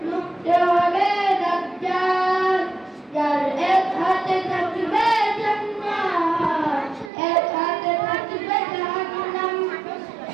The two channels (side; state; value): left; drops out; at 7.1 s